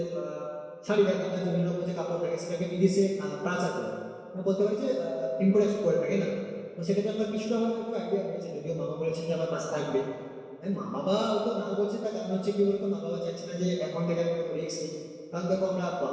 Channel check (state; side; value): identical; both; correlation 1.00